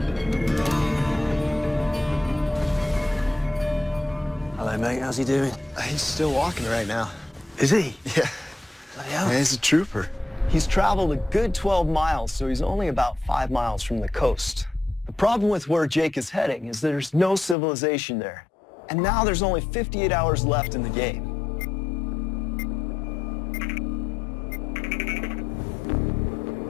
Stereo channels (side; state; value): right; drops out; at 17.6 s